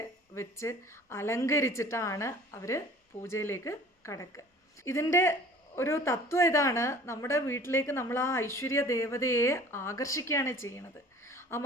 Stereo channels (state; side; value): normal; both; correlation 0.48